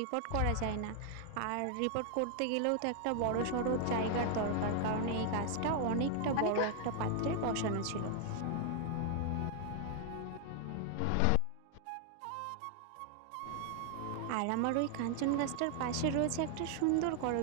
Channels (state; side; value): different; both; correlation 0.00